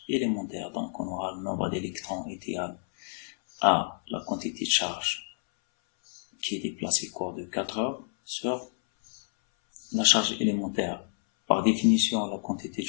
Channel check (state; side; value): silent; right; 58 dB below the other